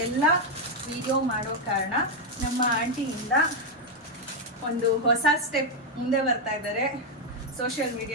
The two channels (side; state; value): both; normal; correlation 0.01